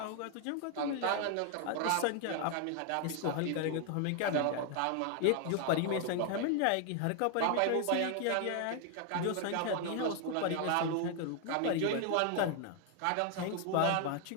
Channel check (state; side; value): different; both; correlation 0.00